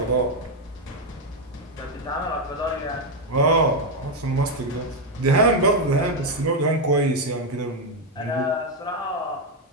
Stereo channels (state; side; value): normal; both; correlation 0.04